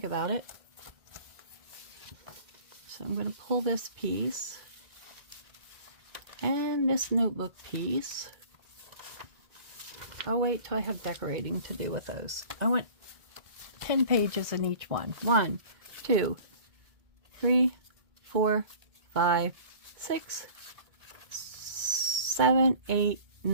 about it. So I'm going to pull this piece and this notebook piece. I'll wait till I have decorating to do with those. I want 10 pages in each one. 1, 2, 3, 4, 5, 6, 7, 8,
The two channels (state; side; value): late; left; 2.2 ms